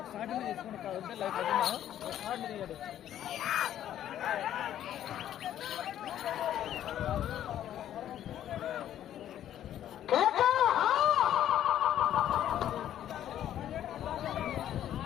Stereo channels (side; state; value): right; quieter; 11.3 dB